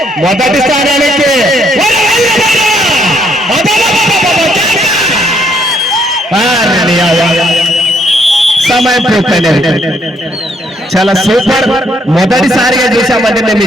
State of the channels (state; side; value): normal; both; correlation 0.70